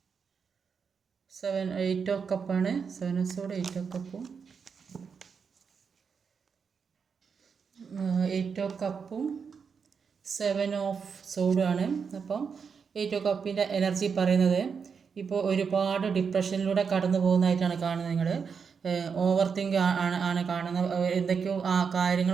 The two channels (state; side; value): quieter; left; 6.1 dB